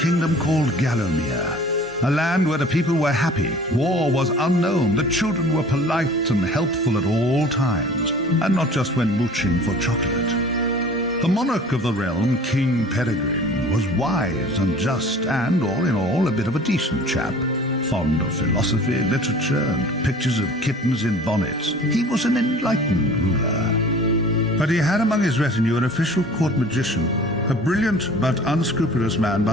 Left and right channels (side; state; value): both; normal; correlation 0.46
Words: called Gallowmere, a land where the people were happy, war was unknown, the children were polite and helpful at all times, and not just when mooching for chocolate. The monarch of the realm, King Peregrine, was wise and just and, all in all, a bit of a decent chap. Fond of philosophy, literature, and pictures of kittens in bonnets. He was an enlightened ruler. But he had among his retinue an official court magician, a brilliant but unscrupulous man